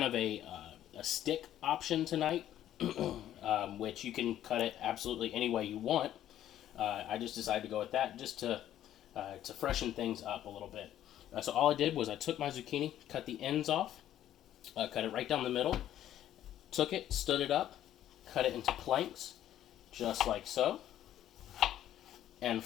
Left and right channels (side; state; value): right; quieter; 11.9 dB